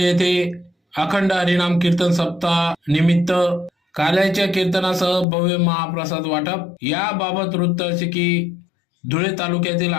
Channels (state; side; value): drops out; right; at 5.2 s